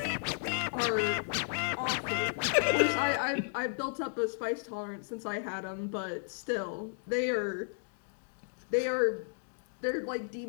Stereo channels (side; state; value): right; silent; digital silence